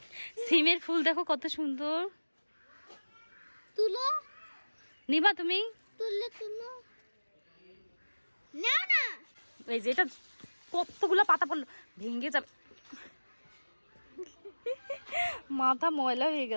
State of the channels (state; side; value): inverted; both; correlation -1.00